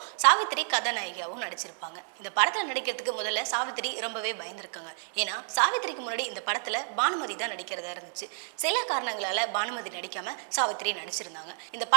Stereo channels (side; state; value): left; silent; digital silence